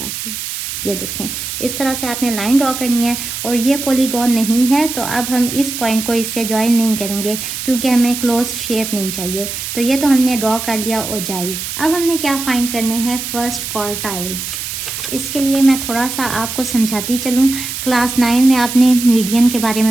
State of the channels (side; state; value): right; noise; hiss, 6 dB below the sound